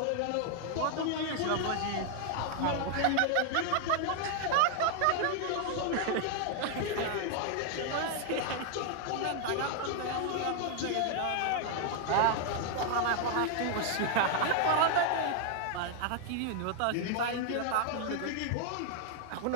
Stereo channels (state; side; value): different; both; correlation 0.00